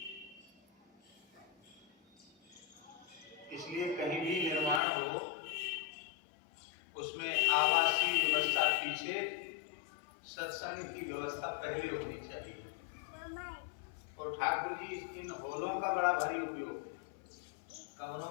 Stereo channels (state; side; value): drops out; right; at 4.8 s